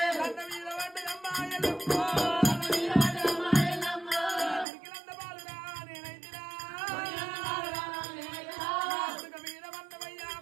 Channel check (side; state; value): left; drops out; at 4.7 s